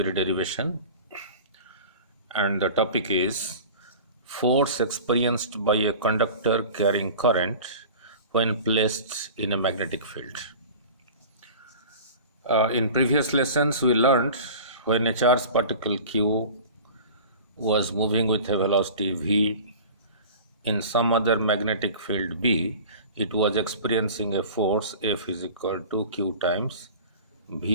derivation, and the topic is force experienced by a conductor carrying current when placed in a magnetic field. In previous lessons, we learned when a charged particle Q was moving with a velocity v in some other magnetic field B, it was experiencing a force F is equal to Q times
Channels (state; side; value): inverted; both; correlation -0.39